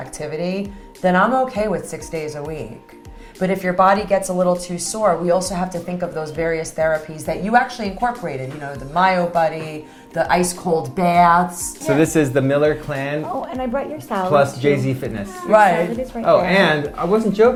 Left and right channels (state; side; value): identical; both; correlation 1.00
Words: then I'm okay with 6 days a week. But if your body gets a little too sore, we also have to think of those various therapies that you actually incorporated, the Myo Buddy, the ice cold baths. So this is the Miller Clan Oh, and I brought your salad. plus too. Jay-Z Fitness. Your Right. salad is right Oh, there. and I wasn't